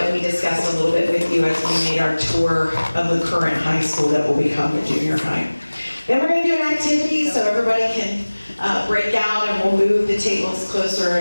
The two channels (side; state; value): both; inverted; correlation -1.00